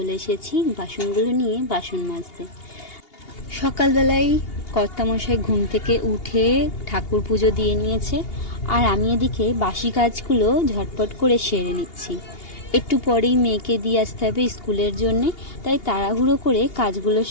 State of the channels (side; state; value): right; late; 2.8 ms